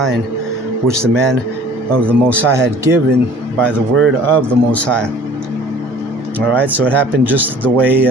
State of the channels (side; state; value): both; normal; correlation 0.49